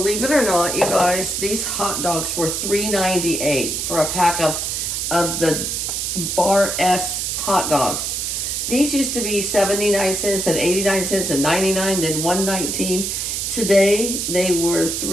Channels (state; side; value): noise; right; hiss, 2 dB below the sound